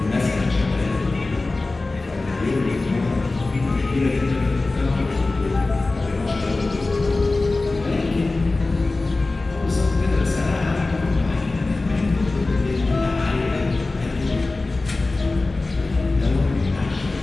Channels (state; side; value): quieter; right; 3.3 dB